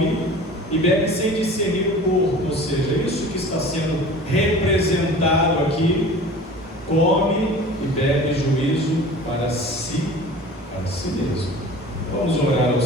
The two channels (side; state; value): both; normal; correlation 0.40